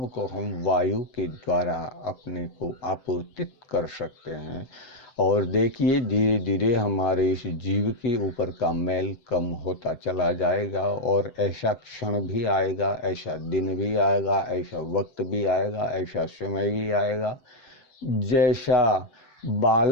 को हम वायु के द्वारा अपने को आपूर्तित कर सकते हैं। और देखिए धीरे धीरे हमारे इस जीव के ऊपर का मैल कम होता चला जाएगा और ऐसा क्षण भी आएगा, ऐसा दिन भी आएगा, ऐसा वक्त भी आएगा, ऐसा समय भी आएगा जैसा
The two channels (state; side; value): late; right; 7.6 ms